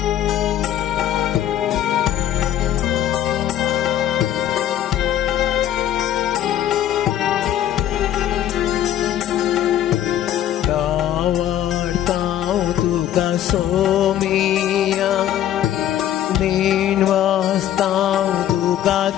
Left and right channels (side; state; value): right; quieter; 11.3 dB